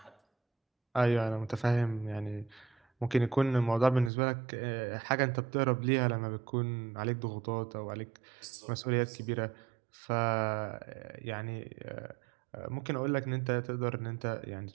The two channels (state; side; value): drops out; left; at 4.1 s